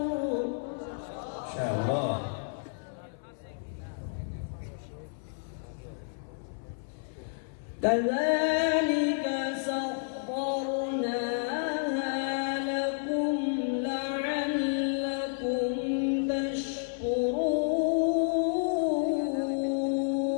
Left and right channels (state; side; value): silent; right; 57 dB below the other